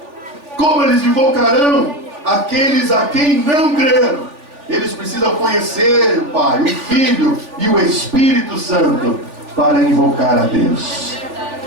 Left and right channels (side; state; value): left; late; 3.4 ms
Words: Como eles invocarão aqueles a quem não creram? Eles precisam conhecer o Pai, o Filho e o Espírito Santo para invocar a Deus.